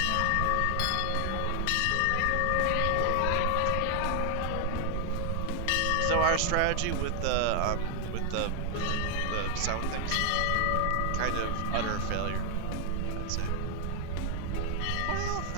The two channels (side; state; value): both; different; correlation 0.00